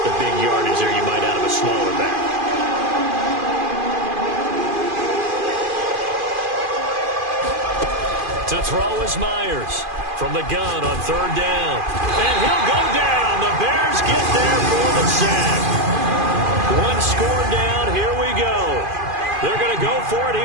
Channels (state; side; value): late; left; 2.5 ms